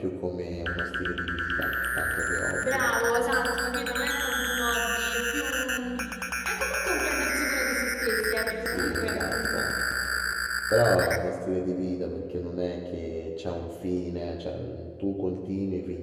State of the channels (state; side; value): identical; both; correlation 1.00